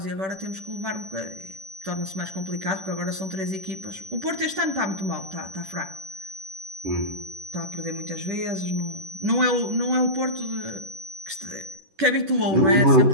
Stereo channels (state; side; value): late; left; 10 ms